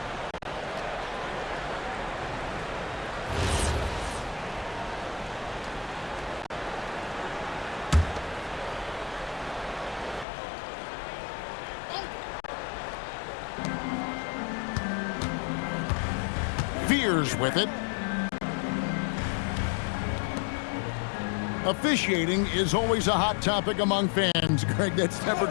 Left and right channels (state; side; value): drops out; right; at 10.2 s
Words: Fears with it. Officiating is always a hot topic among fans, Greg. That's never